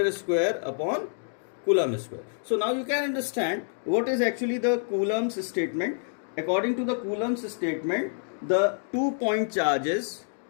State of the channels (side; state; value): right; silent; digital silence